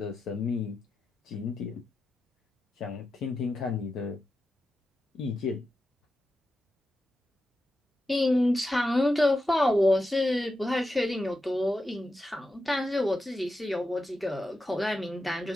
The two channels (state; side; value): normal; both; correlation 0.90